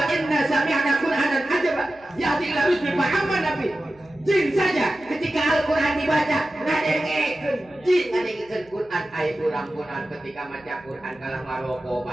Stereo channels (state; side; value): noise; right; hum, 29 dB below the sound